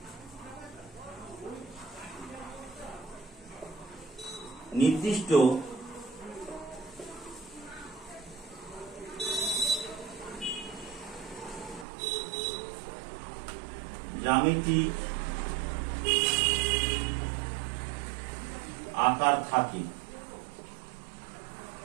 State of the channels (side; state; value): left; drops out; at 11.9 s